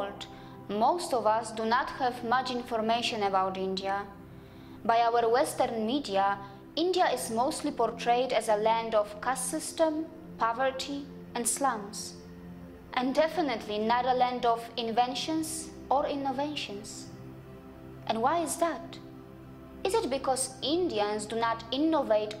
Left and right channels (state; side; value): identical; both; correlation 1.00